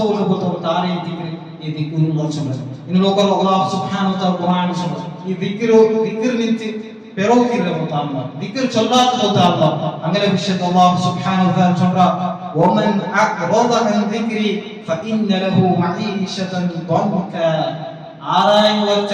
പോലത്തെ താരയിട്ട് ഈ ദിക്റുല്ലാഹ് ചൊല്ലുന്നത്. ഇനി നോക്കൂ അല്ലാഹു സുബ്ഹാനഹു വ തആല ഖുർആനിൽ ചൊല്ലുന്നു ഈ ദിക്ർ നിന്നിട്ട് പെരോക്കില്ല മുത്താല്ല ദിക്ർ ചൊല്ലാത്ത മുത്താല്ല അങ്ങനെ വിശുദ്ധ അല്ലാഹു സുബ്ഹാനഹു വ തആല ചൊല്ലുക വമൻ അഖറദ അൻ ദിക്രി ഫഇന്ന ലഹു മഈശതൻ ദൻക. ಆರಾಯಂಗ ವಚ್ಚ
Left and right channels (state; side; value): identical; both; correlation 1.00